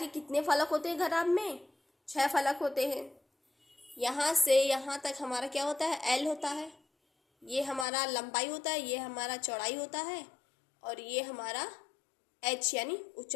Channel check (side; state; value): right; drops out; at 7.9 s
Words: कितने फलक होते हैं घनाभ में? 6 फलक होते हैं। यहाँ से यहाँ तक हमारा क्या होता है? एल होता है। ये हमारा लंबाई होता है, ये हमारा चौड़ाई होता है और ये हमारा एच यानी